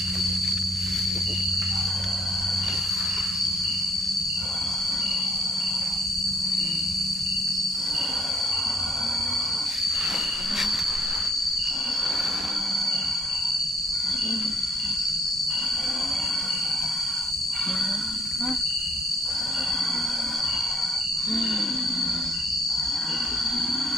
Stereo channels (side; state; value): both; normal; correlation 0.66